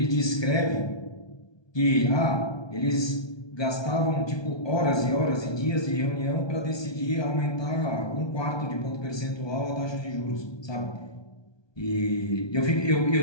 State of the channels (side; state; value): right; late; 1.2 ms